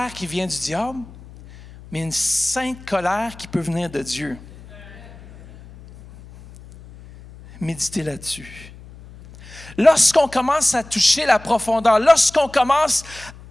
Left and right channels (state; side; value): noise; left; hum, 19 dB below the sound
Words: qui vient du diable, mais une sainte colère qui peut venir de Dieu. Méditez là-dessus. Lorsqu'on commence à toucher la profondeur, lorsqu'on commence